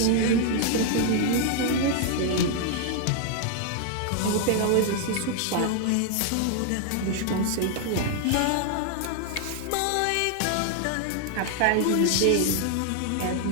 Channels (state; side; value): different; both; correlation 0.00